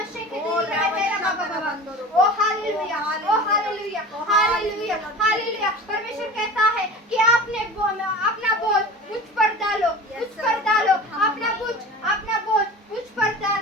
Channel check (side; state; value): both; normal; correlation 0.36